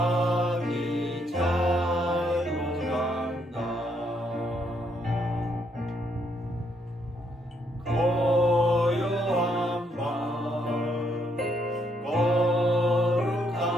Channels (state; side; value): normal; both; correlation 0.73